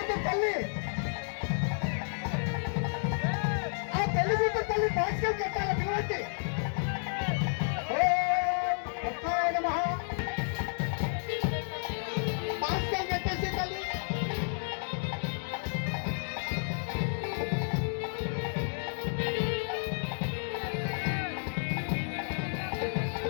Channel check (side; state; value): right; silent; digital silence